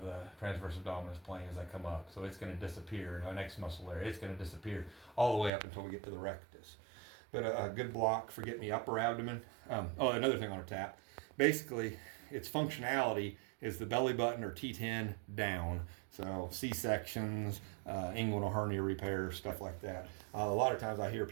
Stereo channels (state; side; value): drops out; left; at 5.5 s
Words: plane as I come up. So it's going to disappear. Our next muscle there, it's going to disappear all the way up until we get to the rectus. But a good block for getting the upper abdomen. Another thing on a tap. Basically, its functionality is the belly button or T10 down. So C-sections, inguinal hernia repair, stuff like that. A lot of times I hear